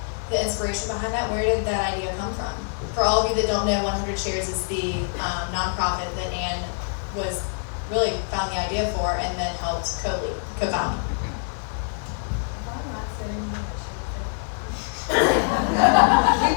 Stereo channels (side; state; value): right; silent; 62 dB below the other